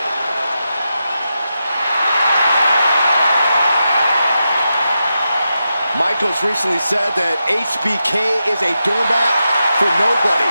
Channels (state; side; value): inverted; both; correlation -0.88